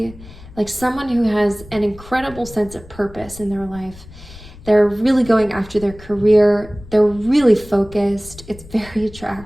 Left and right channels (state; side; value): noise; left; rumble, 19 dB below the sound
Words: like someone who has an incredible sense of purpose in their life. They're really going after their career. They're really focused. It's very